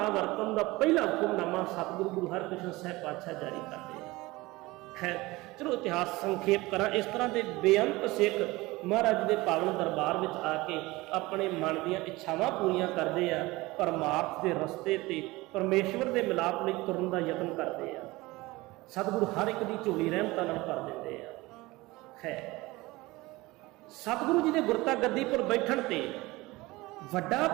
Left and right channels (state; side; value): quieter; left; 20.9 dB